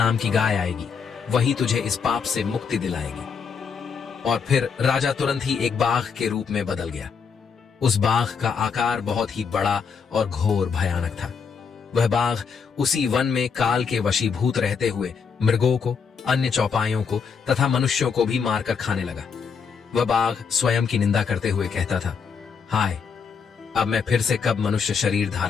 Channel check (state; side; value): quieter; right; 6.0 dB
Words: की गाय आएगी। वही तुझे इस पाप से मुक्ति दिलाएगी। और फिर राजा तुरंत ही एक बाघ के रूप में बदल गया। उस बाघ का आकार बहुत ही बड़ा और घोर भयानक था। वह बाघ उसी वन में काल के वशीभूत रहते हुए मृगों को, अन्य चौपाइयों को तथा मनुष्यों को भी मारकर खाने लगा। वह बाघ स्वयं की निंदा करते हुए कहता था, हाय, अब मैं फिर से कब मनुष्य शरीर